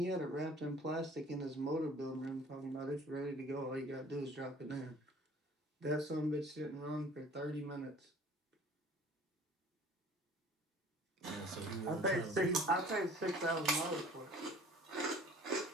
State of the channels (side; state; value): both; normal; correlation 0.49